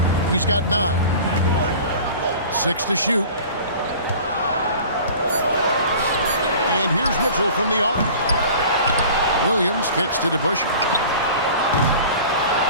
He's got 9. 6 to shoot. And here's Mitchell from the arc. Williams kicks to DeBusschere.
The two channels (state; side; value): inverted; both; correlation -0.42